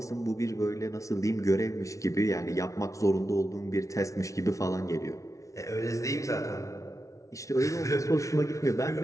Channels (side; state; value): right; late; 0.15 ms